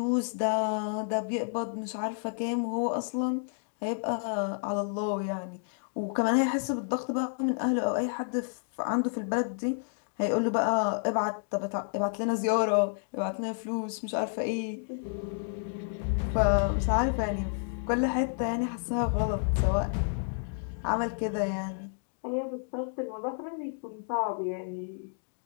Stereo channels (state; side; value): silent; right; digital silence